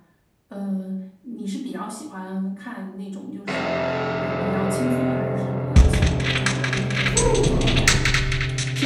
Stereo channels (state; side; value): identical; both; correlation 1.00